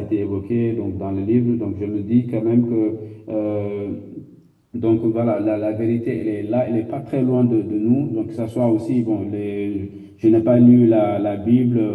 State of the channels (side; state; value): both; identical; correlation 1.00